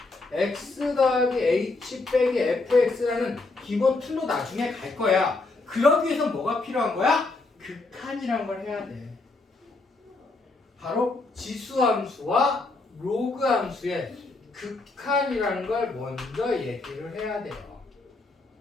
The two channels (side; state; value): right; quieter; 3.4 dB